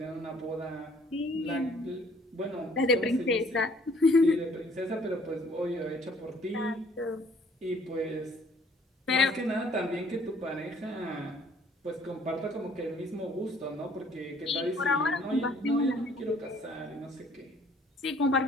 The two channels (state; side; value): normal; both; correlation 0.59